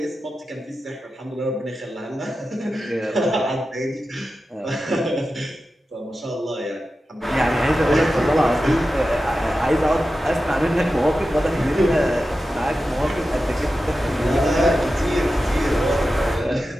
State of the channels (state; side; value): normal; both; correlation 0.92